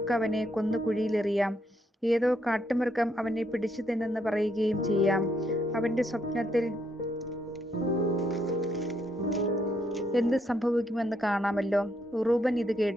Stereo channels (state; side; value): normal; both; correlation 0.75